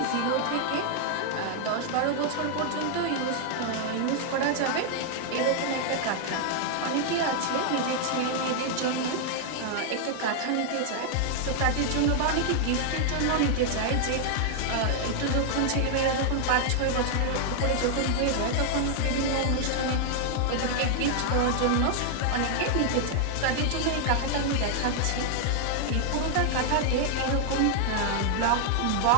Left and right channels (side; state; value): both; different; correlation 0.00